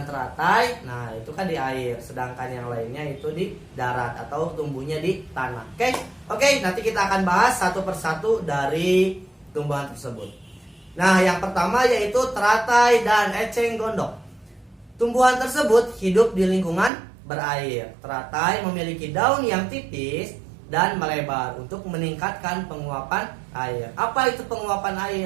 teratai, nah itu kan di air, sedangkan yang lainnya itu di darat atau tumbuhnya di tanah. Oke, nanti kita akan bahas satu persatu dari tumbuhan tersebut. Nah, yang pertama yaitu teratai dan eceng gondok. Tumbuhan tersebut hidup di lingkungan berair. Teratai memiliki daun yang tipis dan melebar untuk meningkatkan penguapan air. Apa itu penguapan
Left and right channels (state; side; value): drops out; left; at 16.9 s